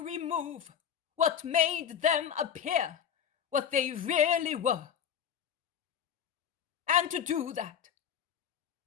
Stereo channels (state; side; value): quieter; right; 8.4 dB